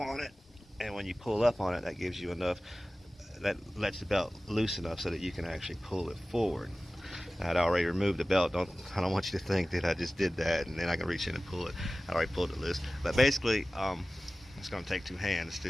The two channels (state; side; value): normal; both; correlation 0.96